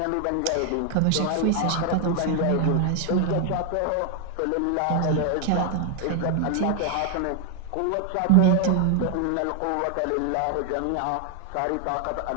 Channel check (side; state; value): both; different; correlation 0.00